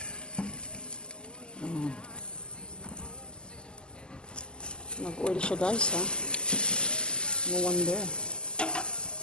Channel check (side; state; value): right; late; 0.047 ms